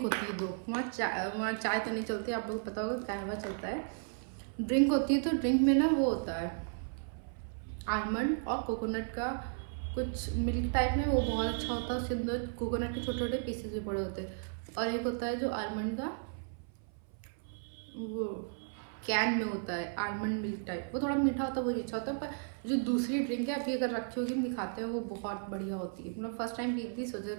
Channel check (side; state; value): left; silent; 55 dB below the other